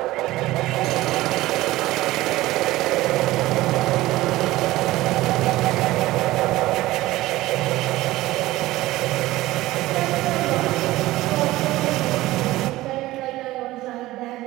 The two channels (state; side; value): quieter; left; 17.4 dB